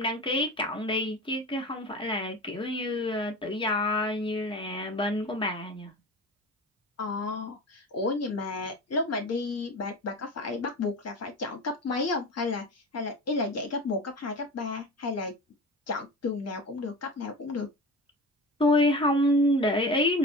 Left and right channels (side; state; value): both; normal; correlation 0.32